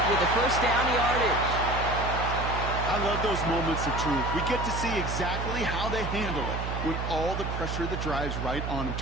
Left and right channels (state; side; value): noise; right; hum, 3 dB below the sound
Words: with the 1st down yardage. I love those moments of truth. We get to see exactly how they handle it when all the pressure that drives right on them.